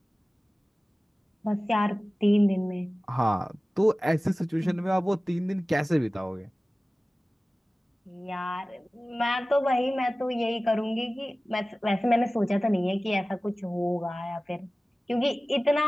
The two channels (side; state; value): both; normal; correlation 0.97